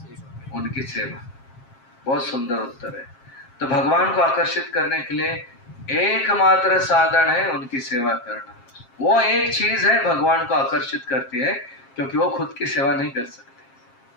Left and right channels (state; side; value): late; right; 7.5 ms